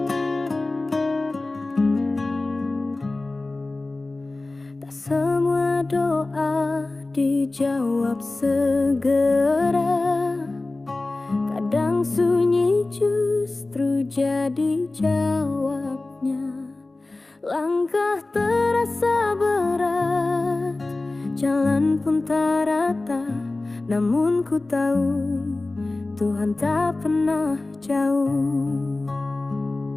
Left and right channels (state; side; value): quieter; right; 3.1 dB